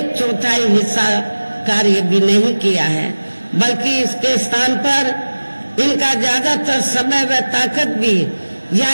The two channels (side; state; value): both; inverted; correlation -1.00